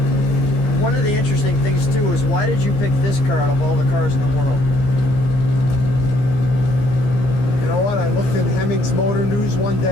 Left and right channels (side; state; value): right; late; 15 ms